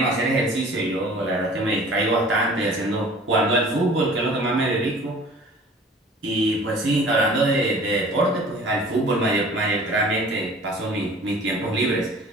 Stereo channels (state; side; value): normal; both; correlation 0.47